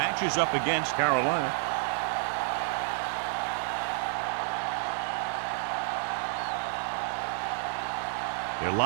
up against Carolina. They're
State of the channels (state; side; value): silent; left; digital silence